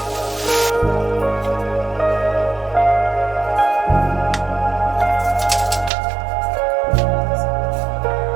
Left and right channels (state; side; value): drops out; left; at 5.9 s